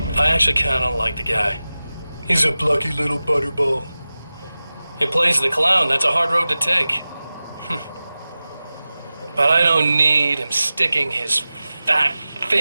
I actually kinda like the guy. He's a plucky little butterball. He plays the clown. That's a hard road to take. But I don't need him sticking his fat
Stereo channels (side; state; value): both; inverted; correlation -0.96